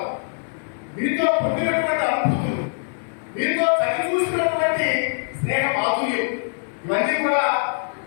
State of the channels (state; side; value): silent; right; 59 dB below the other